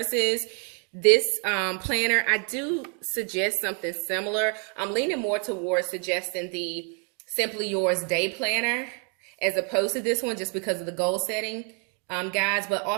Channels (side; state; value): left; quieter; 39.4 dB